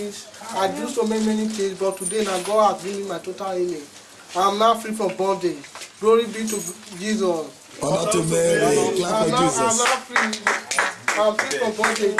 I do so many things, but today now God has given me my total healing. I am now free from bondage. Glory be to Jesus. Honor to Mary. Clap for I'm Jesus. now free. I'm free from bondage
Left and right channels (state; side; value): identical; both; correlation 1.00